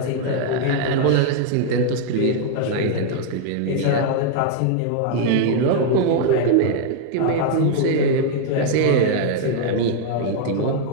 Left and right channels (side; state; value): both; different; correlation 0.00